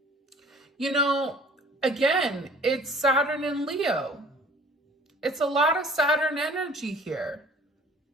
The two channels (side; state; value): both; normal; correlation 0.50